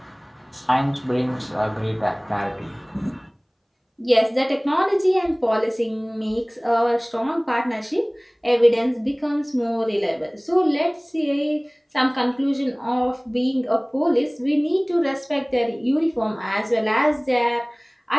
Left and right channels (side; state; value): both; identical; correlation 1.00